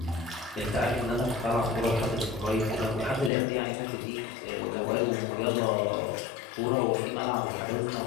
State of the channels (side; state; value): right; drops out; at 3.3 s